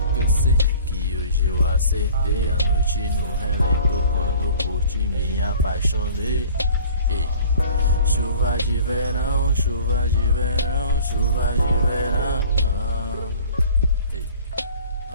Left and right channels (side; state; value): both; inverted; correlation -0.47